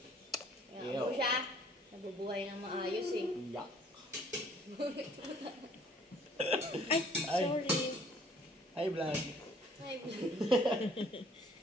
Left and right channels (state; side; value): normal; both; correlation 0.58